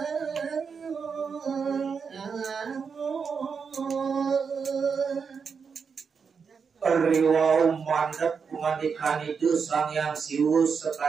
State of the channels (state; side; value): quieter; left; 5.9 dB